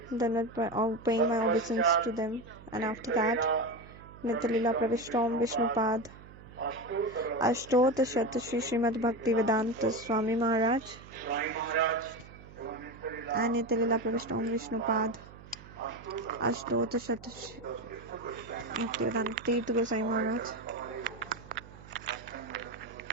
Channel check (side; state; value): right; noise; hum, 19 dB below the sound